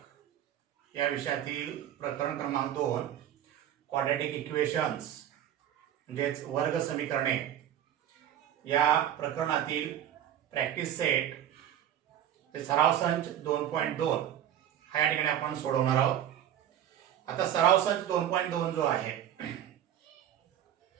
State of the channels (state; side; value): quieter; left; 10.9 dB